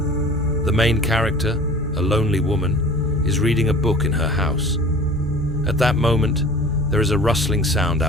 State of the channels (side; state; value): both; normal; correlation 0.43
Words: The main character, a lonely woman, is reading a book in her house. At that moment, there is a rustling sound